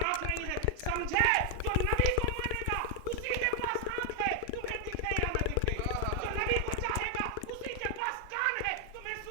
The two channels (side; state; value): both; different; correlation 0.00